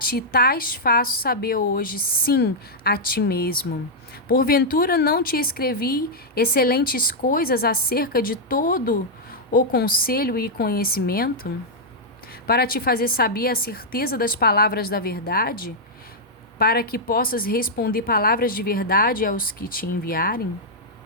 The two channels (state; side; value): normal; both; correlation -0.05